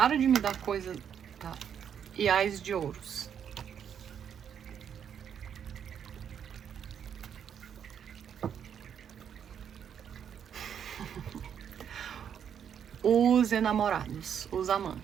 de me dar coisa... Tá. E ás de ouros. Os enamorados, os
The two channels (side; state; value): left; quieter; 8.3 dB